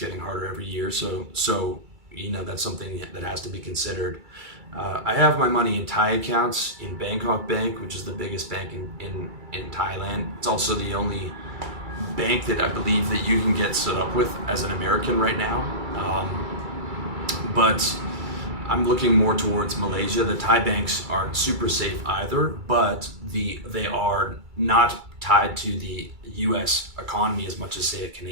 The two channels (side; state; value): left; late; 2.3 ms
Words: harder every year. So that's something that has to be considered. I have my money in Thai accounts in Bangkok Bank, which is the biggest bank in Thailand. It's also the only bank that I believe that you can get set up with as an American right now. But I'm looking more towards Malaysia. The Thai banks aren't super safe either, but they are not tied to the U.S. economy as much as, say, a